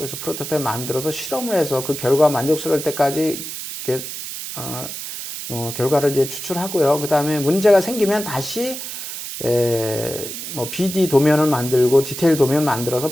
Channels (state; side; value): noise; right; hiss, 8 dB below the sound